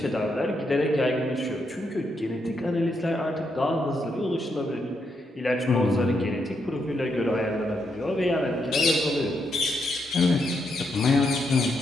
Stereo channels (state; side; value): normal; both; correlation 0.80